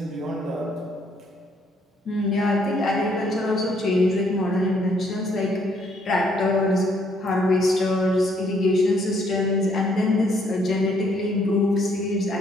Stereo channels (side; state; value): both; normal; correlation 0.68